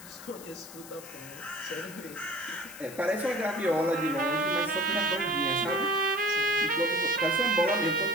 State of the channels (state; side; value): noise; left; hiss, 16 dB below the sound